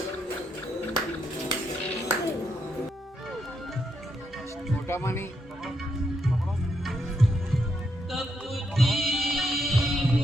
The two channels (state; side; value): normal; both; correlation 0.79